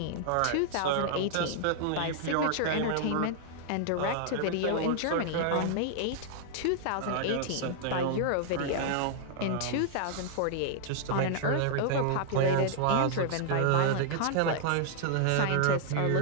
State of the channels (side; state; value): both; different; correlation -0.01